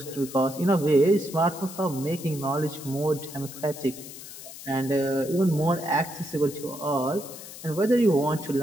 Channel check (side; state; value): left; noise; hiss, 14 dB below the sound